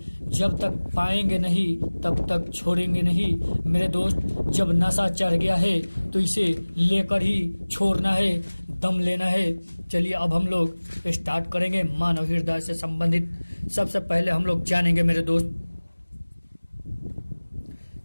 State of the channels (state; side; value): inverted; both; correlation -1.00